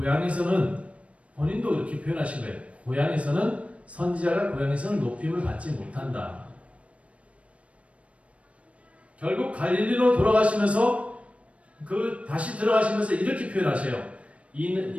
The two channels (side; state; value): left; late; 0.063 ms